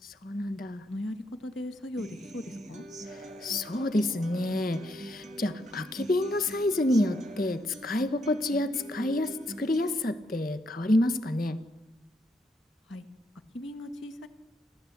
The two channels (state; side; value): normal; both; correlation 0.76